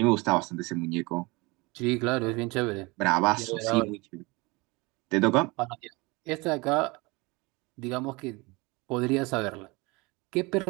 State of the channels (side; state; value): left; quieter; 25.2 dB